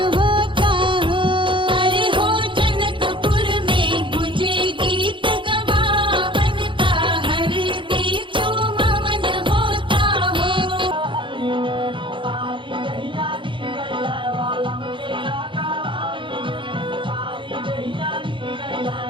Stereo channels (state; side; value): late; left; 0.24 ms